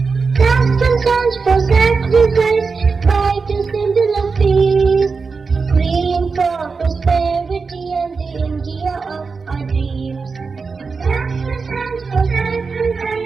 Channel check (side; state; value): left; quieter; 4.7 dB